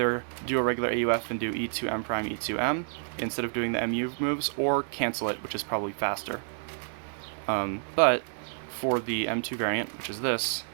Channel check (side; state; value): left; silent; 58 dB below the other